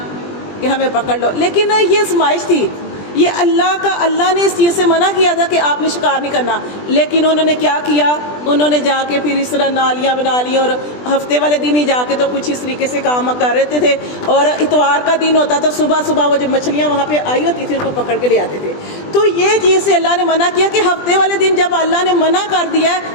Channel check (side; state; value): right; late; 20 ms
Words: کہ ہمیں پکڑ لو۔ لیکن یہ آزمائش تھی، یہ اللہ نے اس چیز سے منع کیا تھا کہ آپ نے شکار نہیں کرنا، لیکن انہوں نے کیا کیا؟ انہوں نے جا کے پھر اس طرح نالیاں بنا لی، اور ہفتے والے دن ہی جا کے تو کچھ اس طریقے سے کام کر رہے تھے، اور اتوار کا دن ہوتا تو صبح وہ جو مچھلیاں وہاں پہ آئی ہوتی تھی ان کو پکڑ کے لے آتے تھے۔ تو یہ چیز سے اللہ نے منع کیا کہ ہفتے والے دن جب اللہ نے منع کر دیا ہے